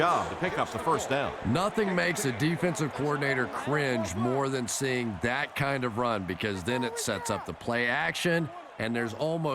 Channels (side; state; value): both; identical; correlation 1.00